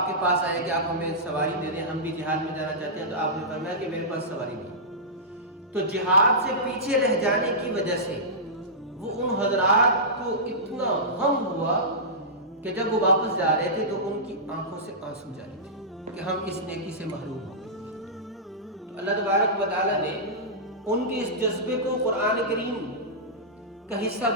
کے پاس آئے کہ آپ ہمیں سواری دے دیں، ہم بھی جہاد میں جانا چاہتے ہیں. تو آپ نے فرمایا کہ میرے پاس سواری نہیں. تو جہاد سے پیچھے رہ جانے کی وجہ سے وہ ان حضرات کو اتنا غم ہوا کہ جب وہ واپس جا رہے تھے تو ان کی آنکھوں سے آنسو جاری تھے کہ ہم اس نیکی سے محروم ہو گئے. تو اللہ تبارک و تعالیٰ نے ان کے اس جذبے کو قرآن کریم کا حصہ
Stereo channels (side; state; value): both; normal; correlation -0.15